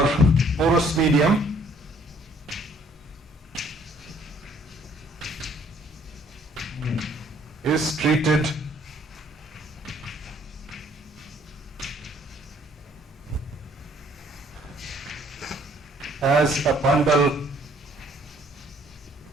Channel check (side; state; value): both; normal; correlation 0.61